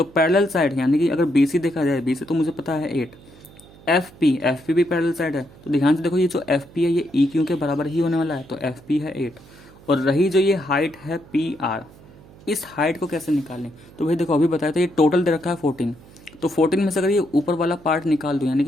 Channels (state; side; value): noise; right; hum, 23 dB below the sound